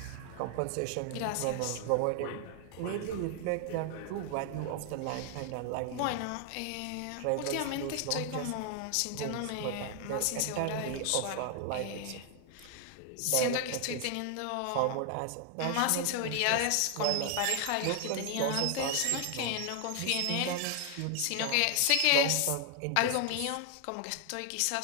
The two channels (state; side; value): different; both; correlation 0.00